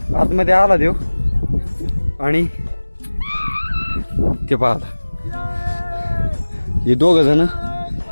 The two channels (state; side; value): inverted; both; correlation -1.00